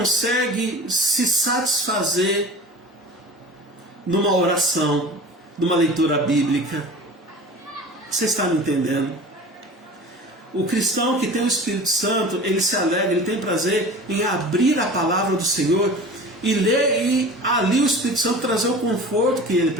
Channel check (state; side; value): normal; both; correlation 0.38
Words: se satisfazer numa oração, numa leitura bíblica. Você está me entendendo? O cristão que tem o Espírito Santo, ele se alegra, ele tem prazer em abrir a palavra do Senhor e ler, e ali o Espírito Santo trazer o conforto que ele